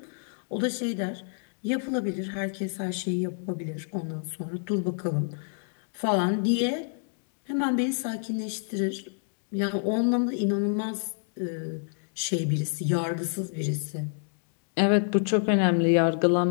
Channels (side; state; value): right; silent; digital silence